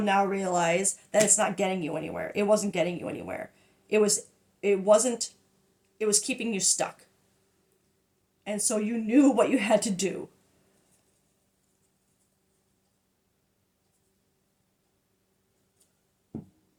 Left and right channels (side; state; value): both; identical; correlation 1.00